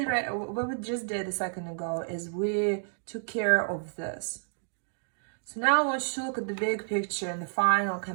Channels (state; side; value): silent; left; digital silence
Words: did a second ago is we took care of this. So now I want you to look at the big picture and the final